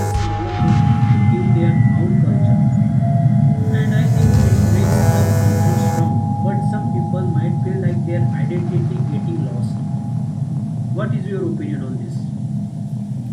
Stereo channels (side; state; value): both; identical; correlation 1.00